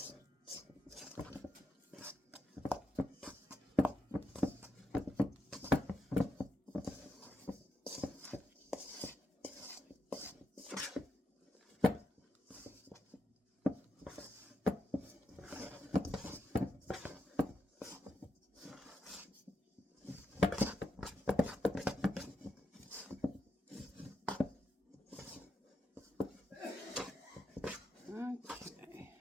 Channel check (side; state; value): both; normal; correlation 0.84